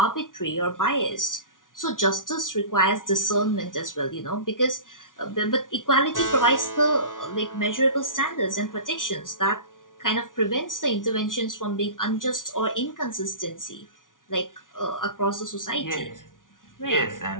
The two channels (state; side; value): late; right; 0.88 ms